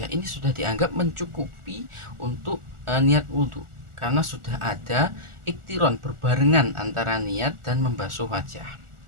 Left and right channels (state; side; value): late; left; 1.4 ms